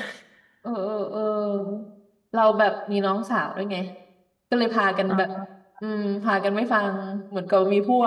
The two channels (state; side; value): identical; both; correlation 1.00